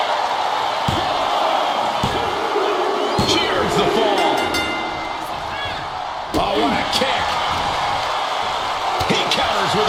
Here's the fall. Oh, what a kick. He counters with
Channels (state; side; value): identical; both; correlation 1.00